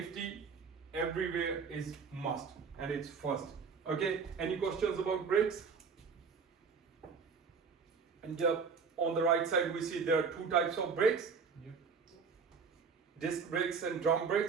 everywhere is must, and it's first. Okay, any questions about brakes? And on the right side we see there are two types of brakes. Yep. Disc brakes and drum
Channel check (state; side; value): quieter; left; 5.5 dB